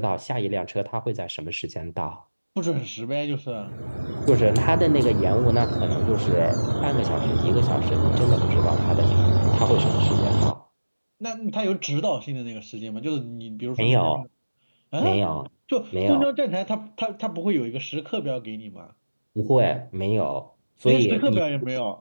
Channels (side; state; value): both; inverted; correlation -1.00